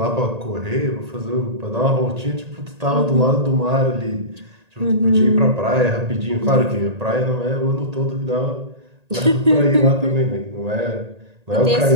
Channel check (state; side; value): late; left; 1.8 ms